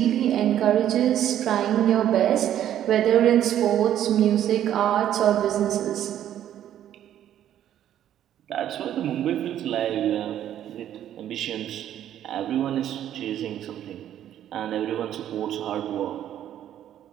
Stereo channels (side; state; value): left; quieter; 11.1 dB